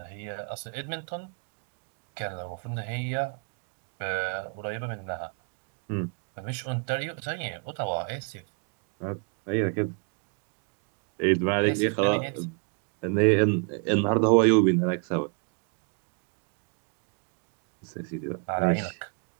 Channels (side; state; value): left; quieter; 39.1 dB